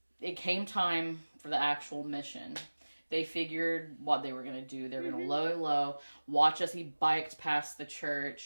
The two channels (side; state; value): both; inverted; correlation -1.00